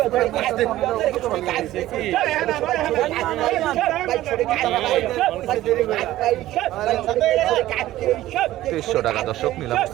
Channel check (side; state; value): left; quieter; 15.0 dB